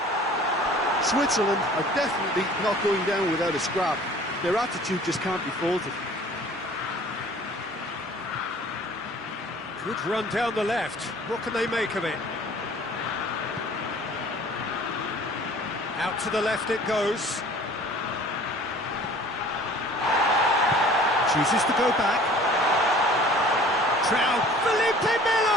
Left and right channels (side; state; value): both; normal; correlation 0.49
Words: Switzerland are definitely not going down without a scrap. Their attitude just can't be faulted. Good run down the left. What can they make of it? Out to the left it goes. Chooses to go back. Trout. Felipe